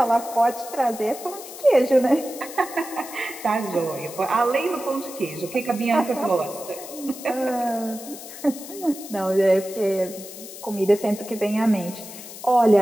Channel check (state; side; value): noise; left; hiss, 13 dB below the sound